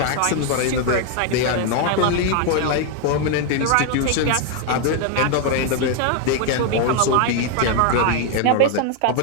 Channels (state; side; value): different; both; correlation 0.00